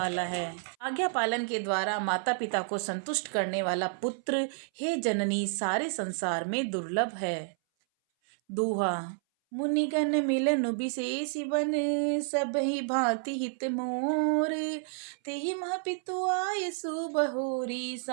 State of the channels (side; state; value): left; silent; 58 dB below the other